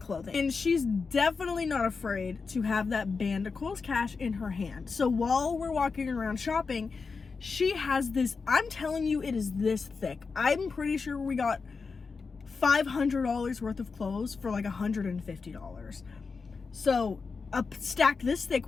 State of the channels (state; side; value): quieter; right; 4.8 dB